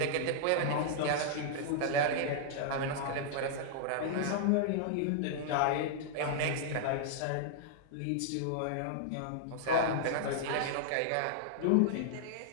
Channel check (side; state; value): both; different; correlation -0.01